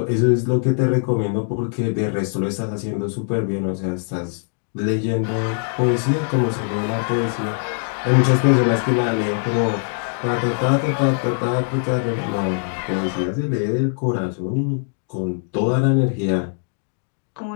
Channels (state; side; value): silent; right; digital silence